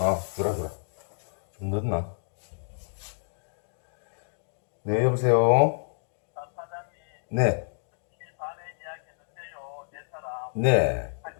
주라. 좀 늦나? 네, 여보세요? 네. 네.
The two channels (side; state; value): right; silent; digital silence